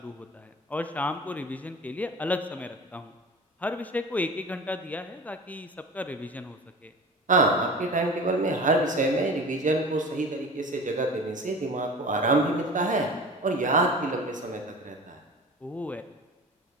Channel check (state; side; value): normal; both; correlation 0.36